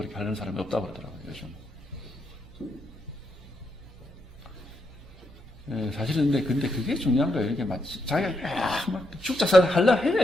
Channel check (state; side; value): normal; both; correlation 0.80